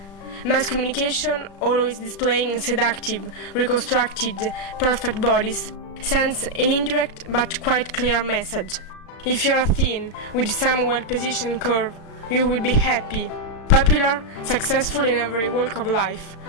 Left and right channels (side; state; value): right; late; 36 ms